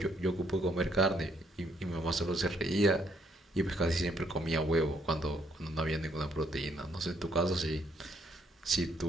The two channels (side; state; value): both; normal; correlation 0.70